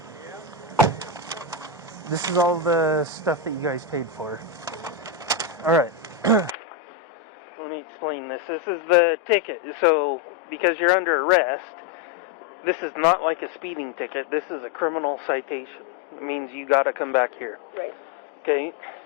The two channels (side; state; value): right; drops out; at 6.6 s